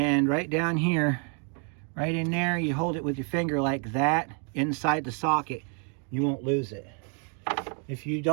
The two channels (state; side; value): quieter; left; 39.6 dB